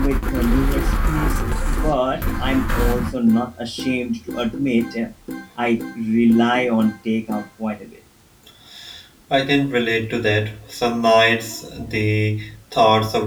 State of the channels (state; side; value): identical; both; correlation 1.00